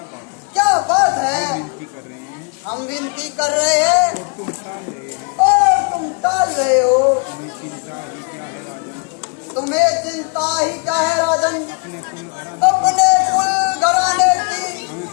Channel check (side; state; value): right; quieter; 35.0 dB